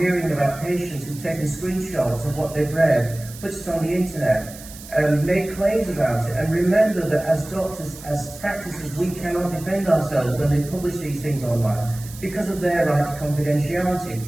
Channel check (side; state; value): right; noise; hiss, 16 dB below the sound